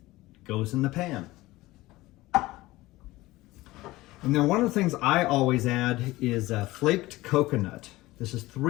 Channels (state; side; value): quieter; right; 18.7 dB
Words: Goes in the pan. And then one of the things I always add is flaked coconut. This is